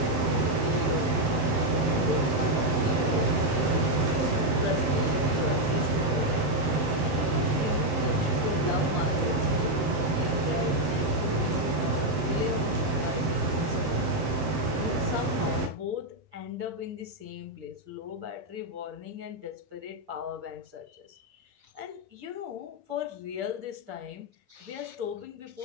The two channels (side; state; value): left; late; 7.7 ms